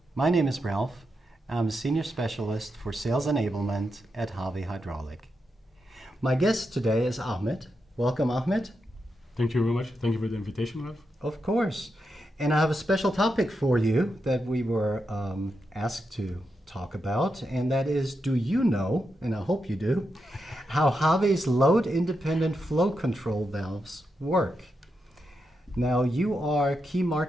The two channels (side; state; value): both; normal; correlation 0.86